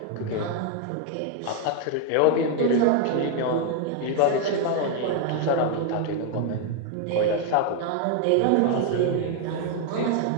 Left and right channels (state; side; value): different; both; correlation 0.00